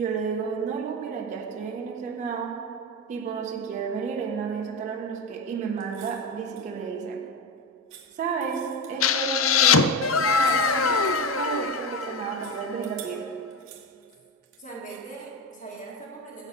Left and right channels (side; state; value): both; normal; correlation 0.17